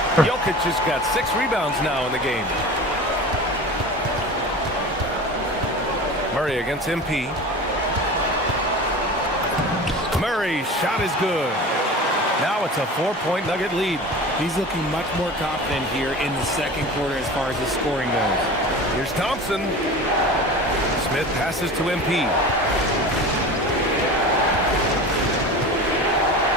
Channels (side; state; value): both; normal; correlation 0.34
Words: Jokic has got 6 rebounds now in the game. Murray against MP. Murray's shot is good. Now it's a 4-point Nugget lead. He's looking much more confident here in the second quarter as far as the scoring goes. Here's Thompson. Smith passes to MP.